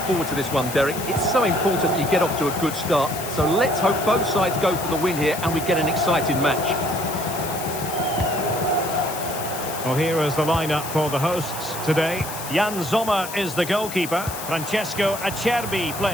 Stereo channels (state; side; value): noise; left; hiss, 10 dB below the sound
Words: to this one, Derek. It's so important you get off to a good start. So let's hope both sides go for the win here and we get an exciting match. Well, here is the lineup for the hosts today. Jan Sommer is the goalkeeper. Francesco Acerbi